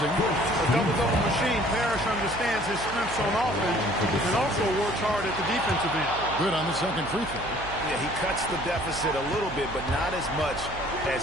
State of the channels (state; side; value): noise; right; hum, 12 dB below the sound